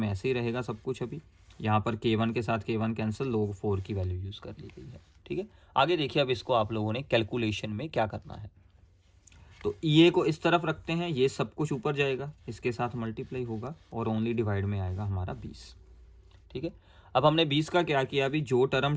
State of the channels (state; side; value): identical; both; correlation 1.00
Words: ऐसे ही रहेगा सब कुछ। अभी यहाँ पर K1 के साथ K1 कैंसिल, log 4 की वैल्यू यूज़ कर ली गई है। ठीक है, आगे देखिए अब इसको आप लोगों ने कैलकुलेशन में क्या करना है। तो EA को इस तरफ रखते हैं, ये सब कुछ ऊपर जाएगा, इसके साथ मल्टीप्लाई होगा और ओनली डिवाइड में आएगा हमारा 20। ठीक है, अब हमने 20 का क्या किया, अभी जो टर्म